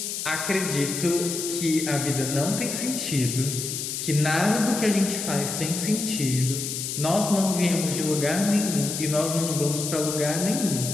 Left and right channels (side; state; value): left; noise; hiss, 4 dB below the sound